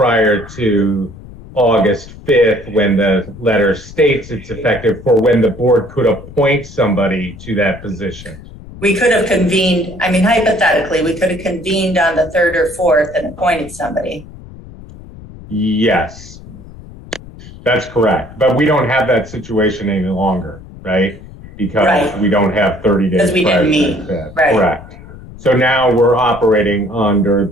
to August 5th, when the letter states it's effective for when the board could appoint somebody to that position. We could have convened, I mean, hypothetically, we could have convened on the 3rd or 4th and appointed somebody. Yes, that's correct. But we don't have that situation any longer, right? Because Right. we don't have 30 days. Because we prior didn't to meet. that. Right. Correct. So now we're operating under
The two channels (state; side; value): noise; left; rumble, 17 dB below the sound